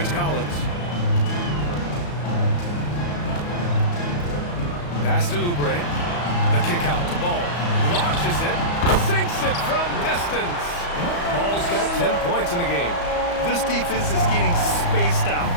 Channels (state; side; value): late; right; 34 ms